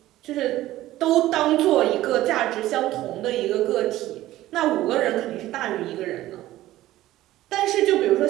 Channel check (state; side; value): quieter; left; 15.3 dB